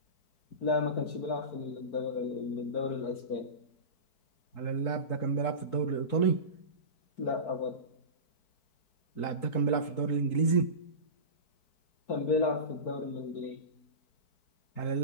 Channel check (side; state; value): right; late; 4.6 ms